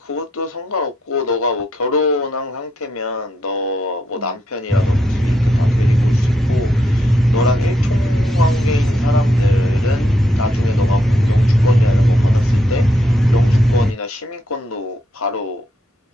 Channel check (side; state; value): both; normal; correlation 0.78